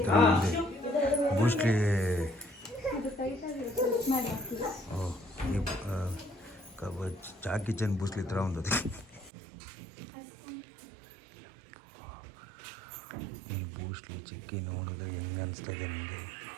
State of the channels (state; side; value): drops out; left; at 9.3 s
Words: ఉంది. బూస్ట్లీ ಜಾಕಿ ಚನ್ ಬೂಸ್ಲಿ ಇತರ ఉంది. ಈ ಬೂಸ್ಲಿ ಚಿಕ್ಕಿ ನೋಡಿದ್ರೆ ಹೆಂಗೆ ಅನಿಸ್ತದೆ ನಿಮಗೆ?